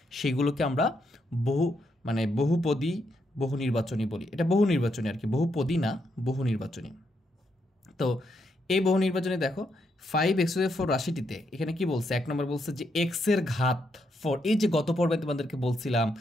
সেগুলোকে আমরা বহুপদী বহু নির্বাচনী বলি। এটা বহু নির্বাচনী আর কি, বহুপদী না, বহু নির্বাচনী। তো এই বহু নির্বাচনে দেখো 5x⁴ রাশিটিতে এখানে কি বলছে, 1 নম্বর বলছে যে x-এর ঘাত 4। এই যে গত পর্বে তোমাদেরকে বলছিলাম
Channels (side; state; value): both; normal; correlation 0.79